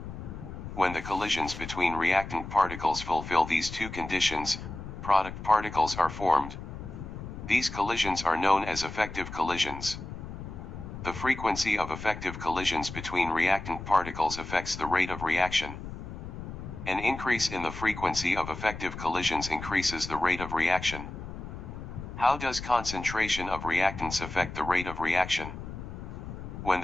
When the collisions between reactant particles fulfill these two conditions, product particles are formed. These collisions are known as effective collisions. The frequency of effective collisions between reactant particles affects the rate of reaction. An increase in the frequency of effective collisions increases the rate of reaction. How does concentration of reactants affect the rate of reaction? When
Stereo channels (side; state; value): left; noise; rumble, 10 dB below the sound